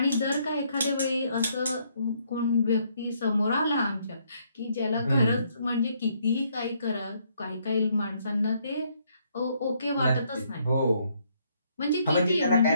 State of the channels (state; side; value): inverted; both; correlation -0.70